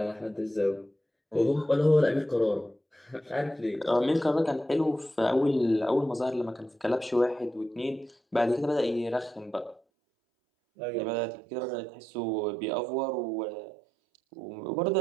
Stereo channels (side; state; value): left; drops out; at 9.8 s